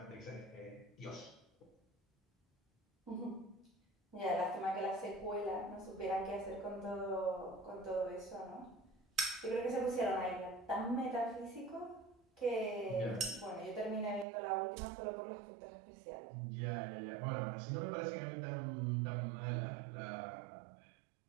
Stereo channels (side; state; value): left; drops out; at 14.2 s